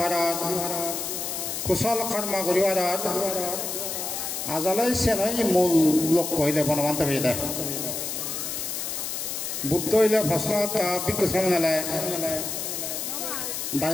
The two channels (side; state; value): left; noise; hiss, 4 dB below the sound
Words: হার কুশল কর্ম ঘুরি হার আজলৈ চেনই মূল লক্ষ্য হইলে বনবন্ত হয়ে দেয় বুদ্ধ হইলে প্রশ্ন ভিক্ষু সামনে